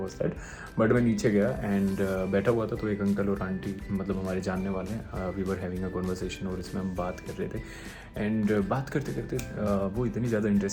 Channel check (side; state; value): both; identical; correlation 1.00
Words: that. But मैं नीचे गया एंड बैठा हुआ था, तो एक अंकल और आंटी, मतलब हमारे जानने वाले हैं, we were having a conversation और इसमें हम बात कर रहे थे। एंड बात करते करते वो इतनी ज़्यादा